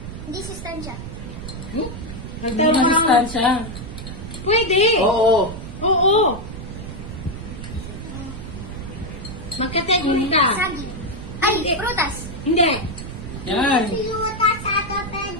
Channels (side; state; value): right; noise; rumble, 9 dB below the sound